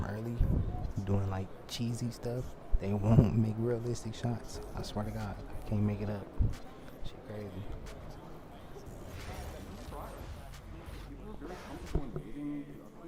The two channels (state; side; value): identical; both; correlation 1.00